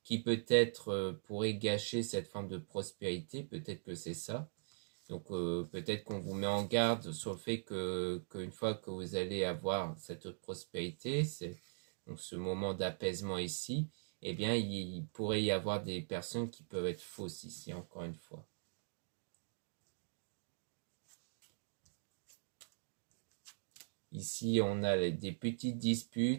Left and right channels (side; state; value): left; silent; digital silence